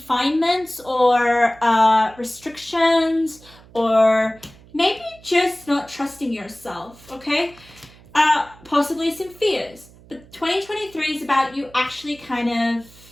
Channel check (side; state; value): right; noise; hum, 24 dB below the sound